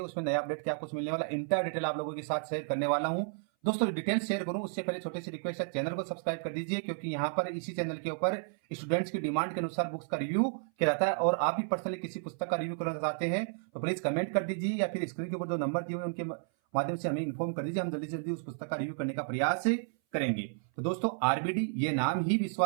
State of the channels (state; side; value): silent; left; 56 dB below the other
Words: उसमें नया अपडेट क्या कुछ मिलने वाला, इंटर डिटेल आप लोगों के साथ शेयर करने वाला हूं। दोस्तों, डिटेल शेयर करूं उससे पहले छोटी सी रिक्वेस्ट है, चैनल को सब्सक्राइब कर दीजिए क्योंकि यहाँ पर इसी चैनल के ऊपर स्टूडेंट्स की डिमांड के अनुसार बुक्स का रिव्यू किया जाता है। और आप भी पर्सनली किसी पुस्तक का रिव्यू करना चाहते हैं तो प्लीज कमेंट कर दीजिए या फिर स्क्रीन के ऊपर जो नंबर दिए हुए उनके माध्यम से हमें इन्फॉर्म कर दीजिए। हम जल्दी से जल्दी उस पुस्तक का रिव्यू करने का प्रयास करेंगे। तो दोस्तों, आरबीडी ये नाम ही